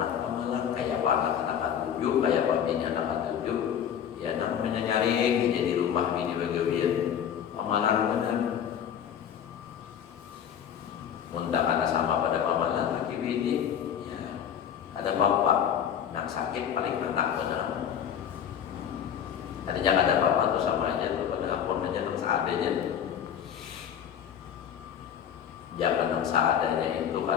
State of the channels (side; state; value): right; quieter; 8.9 dB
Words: anak pamalan, kayak anak tujuh, kayak bini anak tujuh, ya namanya nyari jadi rumah bini bagawian pamalan benar. Muntah anak sama pada pamalan laki bini, ya ada bapak, nak Yang sakit paling anak benar. Tadinya ada apa-apa tuh sama aja tuh pada ampun aja nang seadanya. Jangan nang seadanya itu